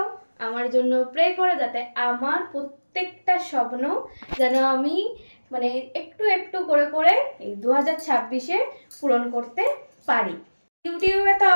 আমার জন্য প্রে করে, যাতে আমার প্রত্যেকটা স্বপ্ন যেন আমি একটু একটু করে করে এই 2026-এ পূরণ করতে পারি। ইউটিউবে তো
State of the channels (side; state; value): both; inverted; correlation -1.00